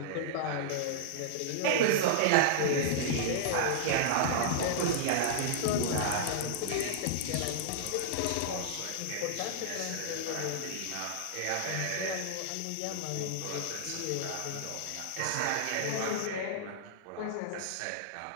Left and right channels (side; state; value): both; different; correlation -0.01